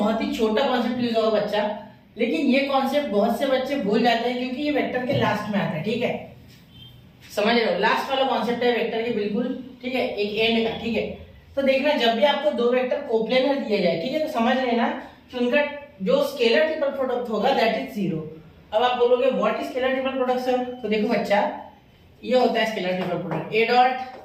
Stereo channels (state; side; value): identical; both; correlation 1.00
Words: ही छोटा कॉन्सेप्ट यूज होगा बच्चा, लेकिन ये कॉन्सेप्ट बहुत से बच्चे भूल जाते हैं क्योंकि ये वेक्टर के लास्ट में आता है, ठीक है। समझ रहे हो, लास्ट वाला कॉन्सेप्ट है वेक्टर के, बिल्कुल ठीक है, एक एंड का, ठीक है। तो देखना, जब भी आपको दो वेक्टर कोप्लेनर दिए जाए, ठीक है, तो समझ लेना कि उनका जो स्केलर ट्रिपल प्रोडक्ट होगा दैट इज जीरो। अब आप बोलोगे what is scalar triple product sir? तो देखो बच्चा, ये होता है scalar triple product, A